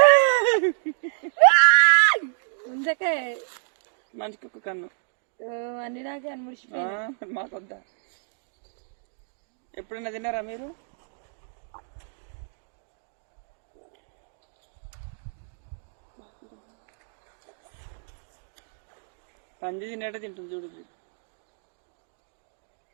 ముందకే మంచి కుక్క కన్ను అన్ని నాకే అనిపిస్తుంది. మాకొద్దా? ఎప్పుడైనా తిన్నారా మీరు? పంది తినేటే తింటుంది చూడు.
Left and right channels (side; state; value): left; silent; digital silence